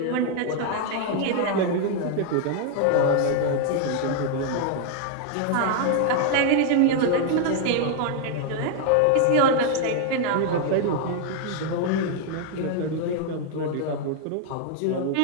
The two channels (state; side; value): different; both; correlation 0.00